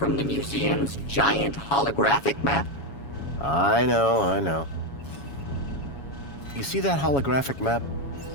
the museum's giant holographic map? I know. You see that holographic map?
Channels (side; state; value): right; late; 7.2 ms